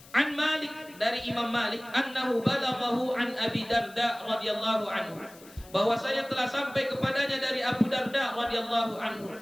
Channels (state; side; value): noise; left; hiss, 22 dB below the sound